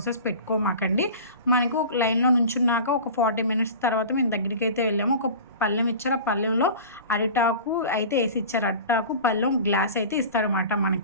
పెట్టుకోమాకండి. మనకు లైన్లో నుంచున్నాక ఒక 40 మినిట్స్ తర్వాత మేము దగ్గరికి అయితే వెళ్ళాము. ఒక పళ్ళెం ఇచ్చారు, ఆ పళ్ళెంలో అరిటాకు అయితే వేసి ఇచ్చారు. అరిటాకు పళ్ళెం గ్లాస్ అయితే ఇస్తారన్నమాట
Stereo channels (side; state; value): both; inverted; correlation -0.37